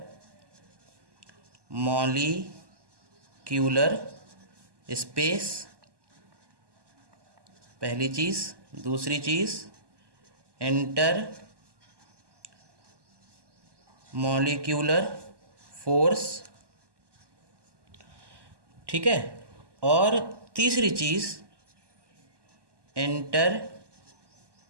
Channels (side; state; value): left; late; 1.2 ms